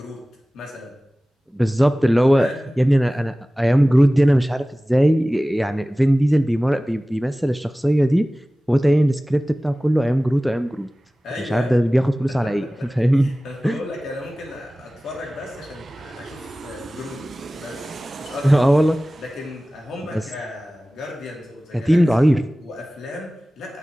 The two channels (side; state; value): both; normal; correlation 0.98